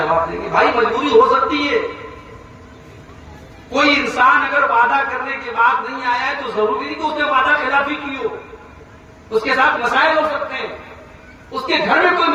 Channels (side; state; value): both; identical; correlation 1.00